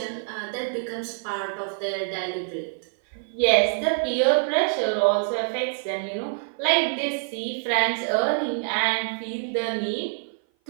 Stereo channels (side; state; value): left; silent; 56 dB below the other